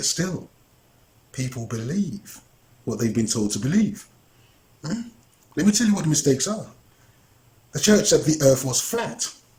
still, people believe what they've been told to believe. Let me tell you what the mistakes are. The church said the earth was flat.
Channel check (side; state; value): both; identical; correlation 1.00